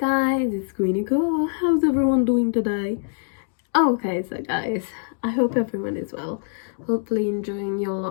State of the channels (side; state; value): right; silent; digital silence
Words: it's Queenie Girl. How's everyone doing today? Okay, so guys, I hope everyone is well. Hopefully enjoying